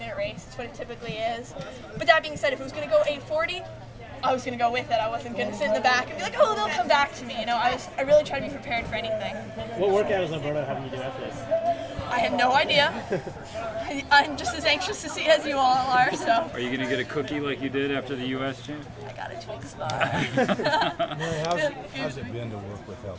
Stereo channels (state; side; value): identical; both; correlation 1.00